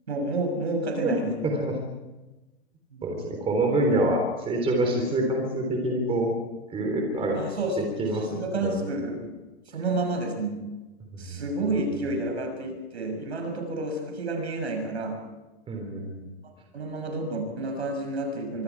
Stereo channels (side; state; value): both; normal; correlation 0.18